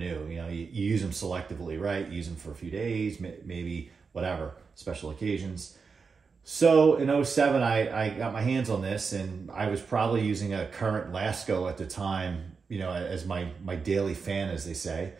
You use them selectively, right? You use them for a few days, maybe whatever, special occasions. So in 2007, I got my hands on this, and I was probably using a current Lasco at the time, as my daily fan, as they say.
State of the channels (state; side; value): quieter; left; 5.2 dB